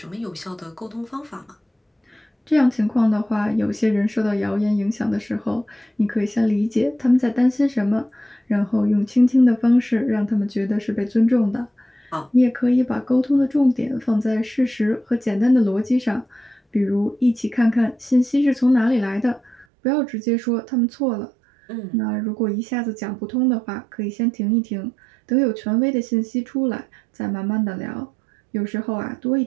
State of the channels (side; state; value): left; drops out; at 19.7 s